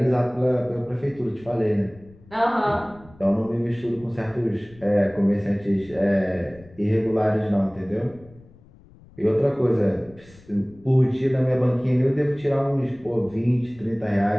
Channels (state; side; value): noise; left; rumble, 24 dB below the sound